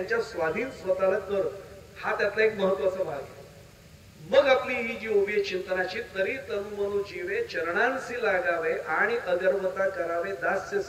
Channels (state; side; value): identical; both; correlation 1.00